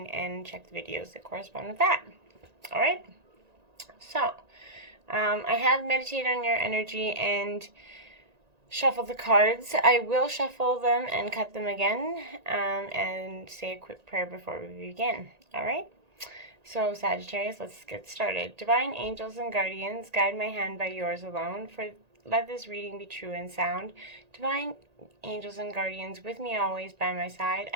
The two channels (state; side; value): late; left; 1.9 ms